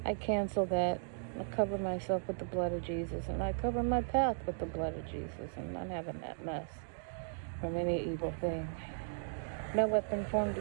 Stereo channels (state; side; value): silent; left; digital silence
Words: I cancel that. I cover myself with the blood of Jesus, and I cover my path with the blood of Jesus. I'm not having that mess from any evil thing. No weapon formed